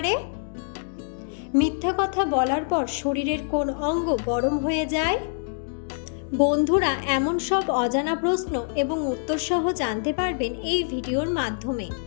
মিথ্যা কথা বলার পর শরীরের কোন অঙ্গ গরম হয়ে যায়? বন্ধুরা, এমন সব অজানা প্রশ্ন এবং উত্তর সহ জানতে পারবেন এই ভিডিওর মাধ্যমে,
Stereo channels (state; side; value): silent; right; digital silence